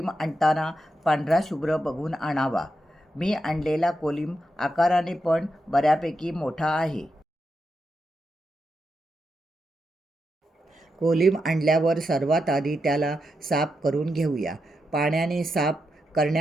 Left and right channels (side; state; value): both; normal; correlation 0.85